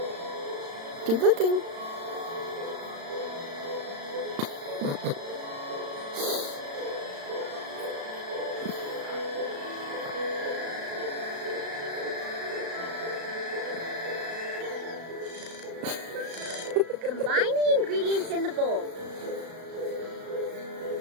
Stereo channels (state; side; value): late; left; 36 ms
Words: Keep looking. Combine the ingredients in the bowl.